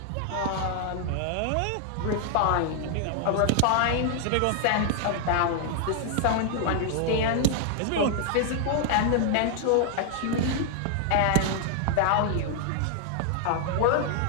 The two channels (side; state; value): both; different; correlation 0.00